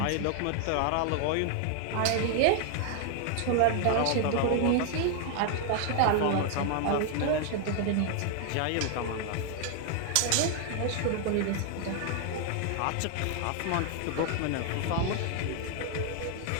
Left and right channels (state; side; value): different; both; correlation 0.00